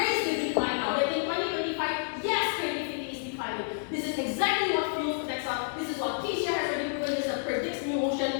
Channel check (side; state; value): right; silent; digital silence